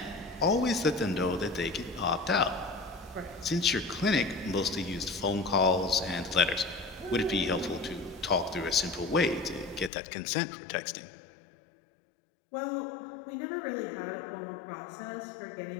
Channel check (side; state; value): right; drops out; at 9.9 s